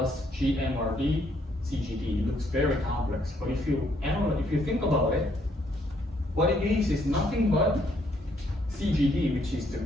GMRD CGD. It looks very complex, but if you think about it, what it means is nothing but CGD, which is the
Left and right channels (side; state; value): both; normal; correlation 0.70